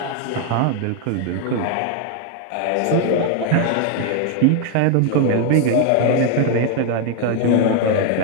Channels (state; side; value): different; both; correlation 0.00